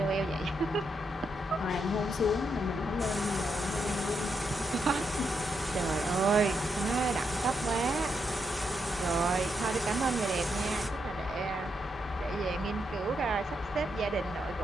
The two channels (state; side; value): normal; both; correlation 0.81